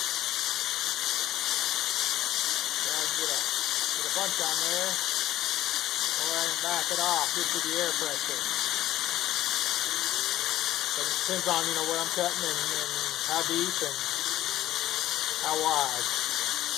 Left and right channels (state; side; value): quieter; right; 14.2 dB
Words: Get a bunch on there. Go ahead and back it off just to the air pressure. But it depends on, you know, where I'm cutting and how deep and how wide.